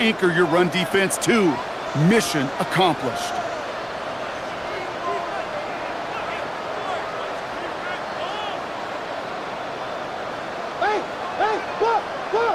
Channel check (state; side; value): identical; both; correlation 1.00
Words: your run defense too. Mission accomplished.